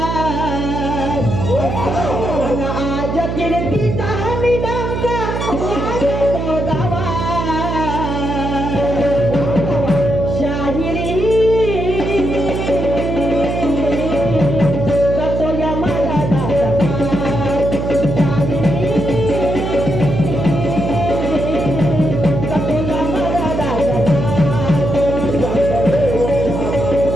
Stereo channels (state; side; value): noise; right; hum, 2 dB below the sound